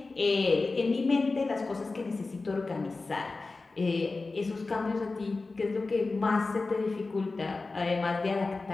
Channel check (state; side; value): quieter; right; 3.7 dB